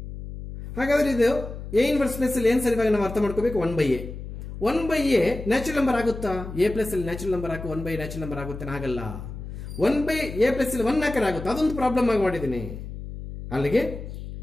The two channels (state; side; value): noise; left; hum, 10 dB below the sound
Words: ಹಾಗಾದ್ರೆ ಇದು ಎ ಇನ್ವರ್ಸ್ ಪ್ಲೇಸ್ ಅಲ್ಲಿ ಏನ್ ಸರ್ ಇವಾಗ ನಾವು ಅರ್ಥ ಮಾಡ್ಕೋಬೇಕು? 1 by a. 1 by a natural number ಆಗುತ್ತಾ? ಎ ಪ್ಲೇಸ್ ಅಲ್ಲಿ ನ್ಯಾಚುರಲ್ ನಂಬರ್ ಹಾಕು 1 by ನ್ಯಾಚುರಲ್ ನಂಬರ್ ಆಗುತ್ತೆ? ಆಗಲ್ಲ. 1 by a ಪ್ಲೇಸ್ ಅಲ್ಲಿ 1 ಹಾಕರ್ ಆಗುತ್ತೆ, ಅದೊಂದು ಪ್ರಾಬ್ಲಮ್ ಆಗಿ ಮಾಡಿದ್ದೀನಿ. ಅಲ್ಲಿಗೆ